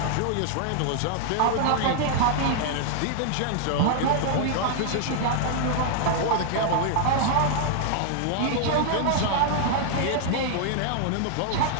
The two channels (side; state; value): both; different; correlation -0.01